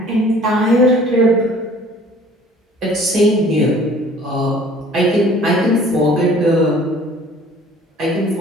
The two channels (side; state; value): both; normal; correlation 0.52